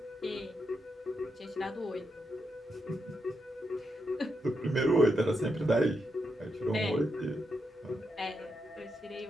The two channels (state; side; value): normal; both; correlation 0.84